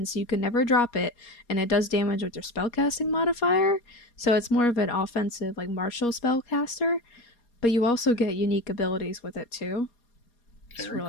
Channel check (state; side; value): late; right; 4.2 ms